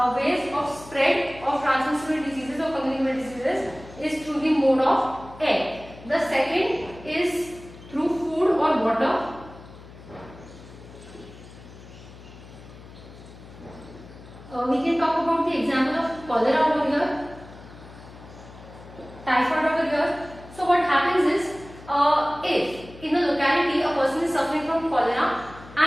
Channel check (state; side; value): noise; left; hum, 18 dB below the sound